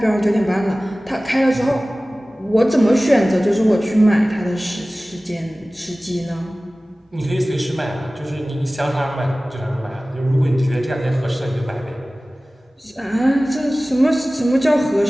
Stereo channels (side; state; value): both; normal; correlation 0.97